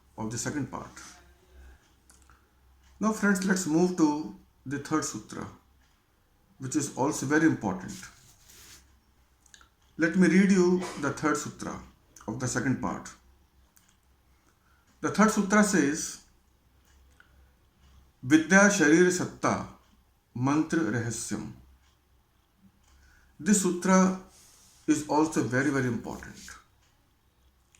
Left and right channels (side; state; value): both; identical; correlation 1.00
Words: of the second part. Now friends, let's move to the third sutra, which is also very important. Let me read you the third sutra of the second part. The third sutra says, Vidya Sharira Satta Mantra Rahasyam. This sutra is also very, very important.